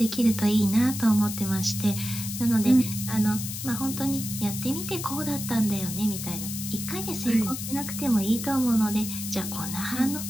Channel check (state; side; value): noise; left; hiss, 7 dB below the sound